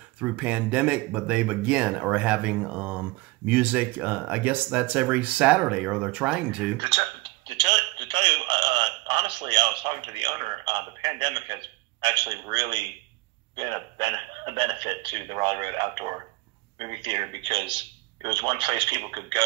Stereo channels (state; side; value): quieter; left; 21.1 dB